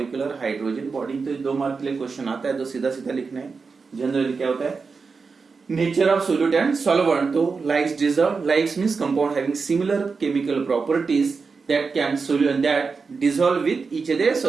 hydrogen bonding. तो 2 मार्क के लिए क्वेश्चन आता है, तो सीधा सीधा लिखना है। जनरली क्या होता है, nature of solute and solvent, तो likes dissolve, likes means compound having similar chemical properties that can that dissolve with each other,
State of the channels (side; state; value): left; quieter; 4.8 dB